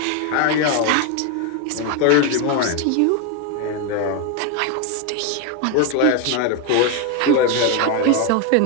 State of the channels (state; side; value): different; both; correlation 0.01